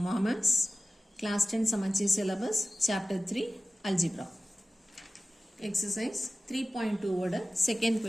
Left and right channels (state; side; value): normal; both; correlation 0.96